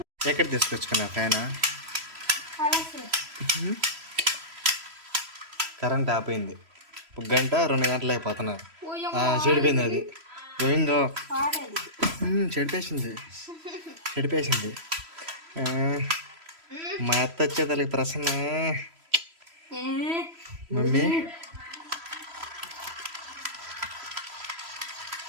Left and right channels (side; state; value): left; late; 3.0 ms